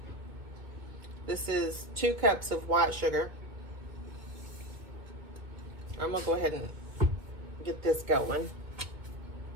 This is 2 cups of white sugar. I'm gonna go ahead and get this going,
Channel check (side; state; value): left; late; 1.9 ms